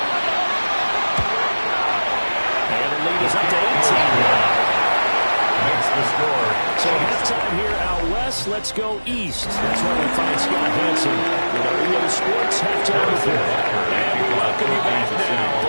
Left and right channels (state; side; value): inverted; both; correlation -1.00